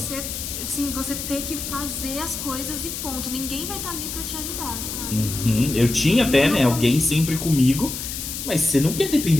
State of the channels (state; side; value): noise; left; hiss, 6 dB below the sound